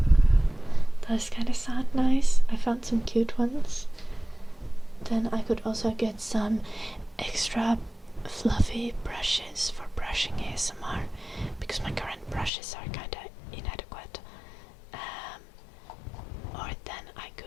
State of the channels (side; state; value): right; drops out; at 12.5 s